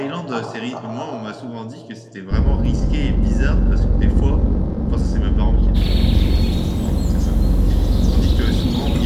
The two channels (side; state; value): both; identical; correlation 1.00